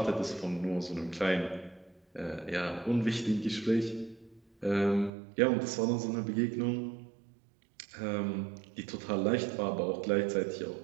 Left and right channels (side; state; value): left; drops out; at 5.1 s